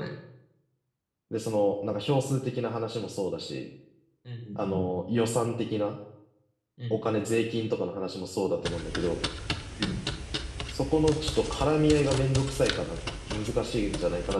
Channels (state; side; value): identical; both; correlation 1.00